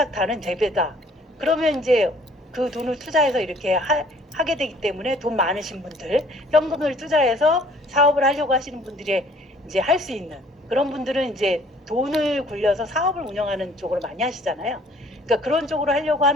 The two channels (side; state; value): both; normal; correlation 0.56